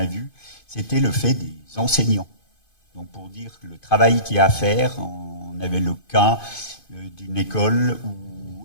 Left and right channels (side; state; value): right; late; 2.5 ms